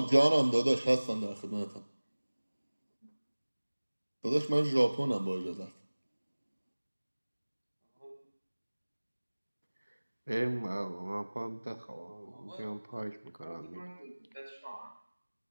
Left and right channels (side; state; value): both; inverted; correlation -1.00